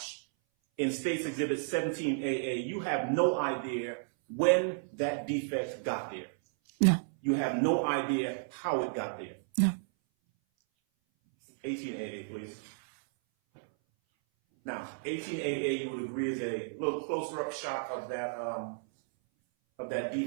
in States Exhibit 17AA, you have no idea when that defect got there. No. You have no idea how it got there. No. 18AA, please. Now, 18AA, you would agree, is a little closer up shot of that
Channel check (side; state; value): left; silent; 56 dB below the other